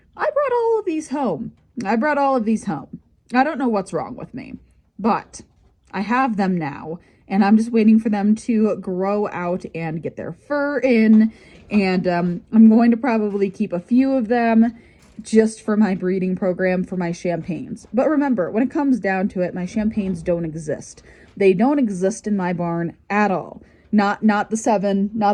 brought all of these home. I don't know what's wrong with me, but I have them now, and I'm just waiting for them to grow out and get their fur in, and I'm going to probably keep a few of them just for my breeding program for my champagnes. But remember, when it comes down to it, my champagnes don't exist. They don't exist in my barn at all. Not the 7,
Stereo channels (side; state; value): both; identical; correlation 1.00